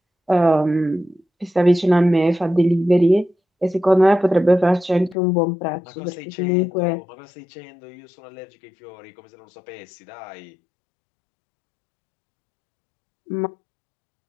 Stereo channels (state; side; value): drops out; right; at 5.2 s